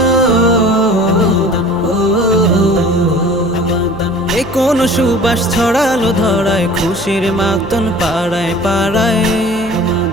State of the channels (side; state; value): right; noise; hum, 15 dB below the sound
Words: এ কোন সুবাস ছড়ালো ধরায়, খুশির মাতন পাড়ায় পাড়ায়।